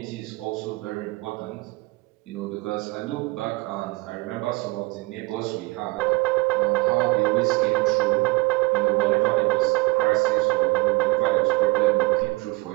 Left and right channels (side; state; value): left; quieter; 23.2 dB